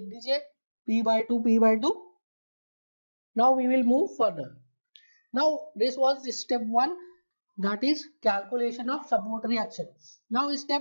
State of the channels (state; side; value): inverted; both; correlation -1.00